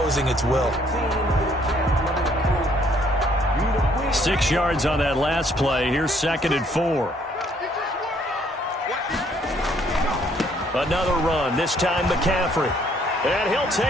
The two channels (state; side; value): normal; both; correlation 0.65